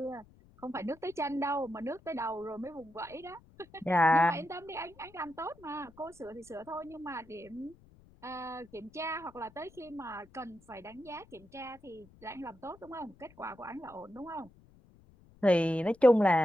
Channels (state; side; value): noise; left; rumble, 26 dB below the sound